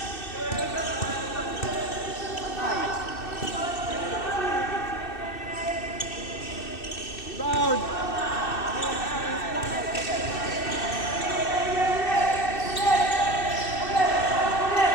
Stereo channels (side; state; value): right; late; 2.6 ms